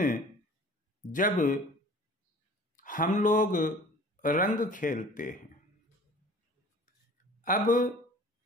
जब हम लोग रंग खेलते हैं। अब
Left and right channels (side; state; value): both; normal; correlation 0.46